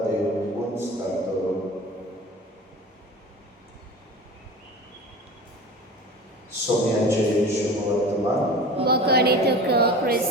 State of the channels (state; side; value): normal; both; correlation 0.36